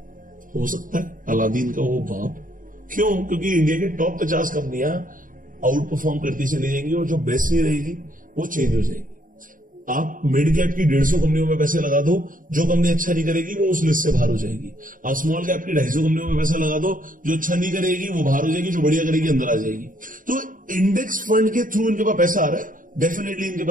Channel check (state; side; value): late; left; 0.39 ms